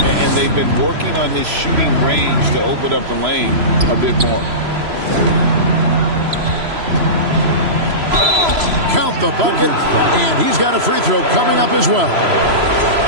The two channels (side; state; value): left; late; 3.0 ms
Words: they've been working on his shooting range to open up the lane a bit more. Count the bucket, and he's got a free throw coming up as well.